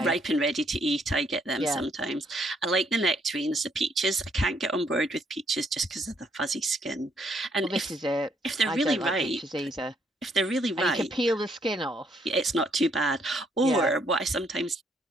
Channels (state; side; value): normal; both; correlation 0.70